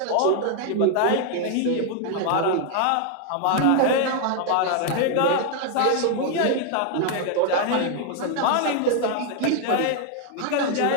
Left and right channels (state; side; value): different; both; correlation 0.01